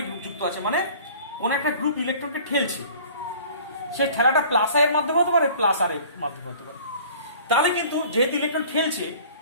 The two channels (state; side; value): inverted; both; correlation -0.48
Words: গ্রুপ যুক্ত আছে মানে কোন একটা গ্রুপ ইলেকট্রনকে ঠেলছে, সে ঠেলাটা প্লাস আই এর মাধ্যমে হতে পারে প্লাস আর এর মাধ্যমে হতে পারে, তাহলে কিন্তু যেহেতু ইলেকট্রন ঠেলছে